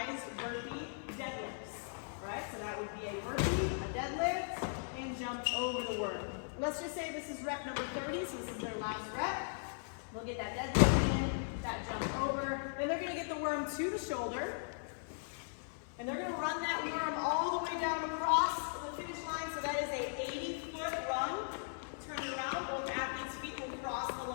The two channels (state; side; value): silent; right; 52 dB below the other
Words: burpee deadlifts. All right, so that would be a burpee, a deadlift, and jump over the worm. Let's just say this is rep number 30, so this is their last rep. They'll get that deadlift in, that jump over. Then they're going to get the worm to the shoulder. And they're going to run that worm all the way down across the finish line. So that is a 80-foot run. Turn it around. Both athletes' feet will cross the